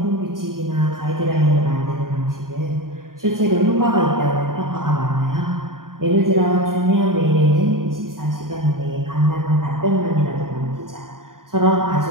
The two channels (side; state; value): left; late; 0.91 ms